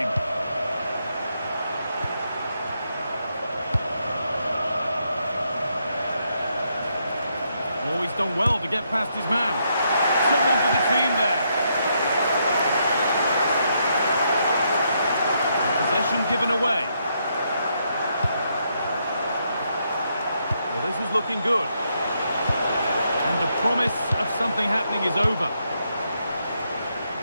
Oh, he's done well to get past his man. Someone for the team there. Possession given away. Well, this is looking good. And the promise of something happening is over.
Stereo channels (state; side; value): inverted; both; correlation -0.77